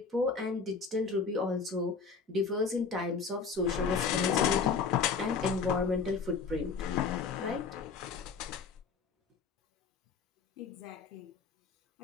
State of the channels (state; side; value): quieter; right; 5.3 dB